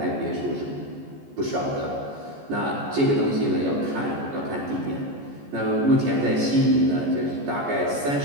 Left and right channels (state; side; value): late; left; 14 ms